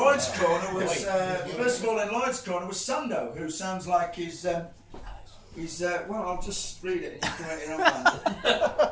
corner was, first of all, in Lloyd's corner was Sando, who sounds like he's well, I'll just read it and you can write your own man.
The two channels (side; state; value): both; identical; correlation 1.00